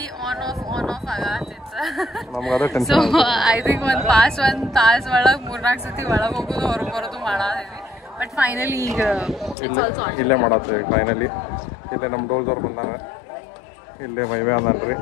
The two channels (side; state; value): right; drops out; at 9.6 s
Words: ಆನ್ ಆಫ್ ಆಗತ್ತಿತ್ತು. ನಮ್ಗೆ ಅದೇ ಸೊ ಟೆನ್ಷನ್. ಐ ಥಿಂಕ್ ಒಂದ್ ತಾಸ್ ಒಳಗ್ 3-4 ಸತಿ ಒಳಗ್ ಹೋಗುದು ಹೊರಗ್ ಬರೋದು ಮಾಡಾದಿದ್ವಿ. ಬಟ್ ಫೈನಲಿ ಈಗ ಇಲ್ಲೇ ಮಾಡತ್ರಿ. ಫೈನಲಿ ಇಲ್ಲೇ ನಮ್ಮ ಡೋಲ್ದವ್ರು ಬಂದಾರ. ಇಲ್ಲೇ ಮೈವೆ ಅದಾನ್ರಿ,